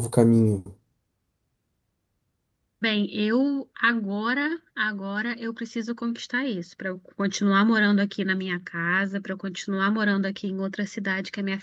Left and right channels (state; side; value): identical; both; correlation 1.00